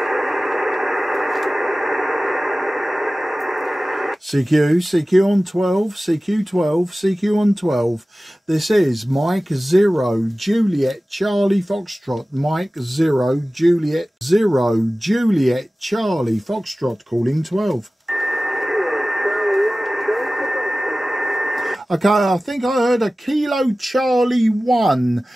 CQ, CQ on 12, CQ12, CQ on 12. This is Mike 0, Juliet, Charlie Foxtrot. Mike 0, Juliet, 0, Juliet, Charlie Foxtrot, calling 12. Okay, I think I heard a Kilo Charlie 1.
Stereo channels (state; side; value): normal; both; correlation 0.97